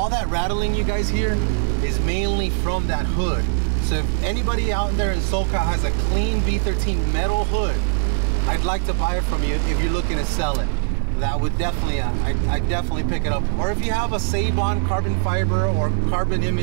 that rattling you guys hear is mainly from that hood. So if anybody out there in SoCal has a clean V13 metal hood, I'd like to buy it from you if you're looking to sell it. That would definitely, I'd definitely pick it up. Or if you have a Save-On carbon fiber or Carbon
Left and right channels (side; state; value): left; silent; digital silence